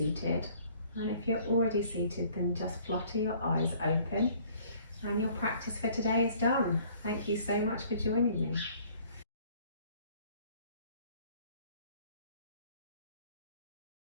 And if you're already seated, then just flutter your eyes open. And your practice for today is done. Thank you so much for joining me.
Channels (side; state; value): both; inverted; correlation -0.57